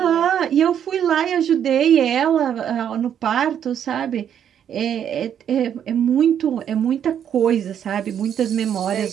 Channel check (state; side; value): quieter; left; 9.2 dB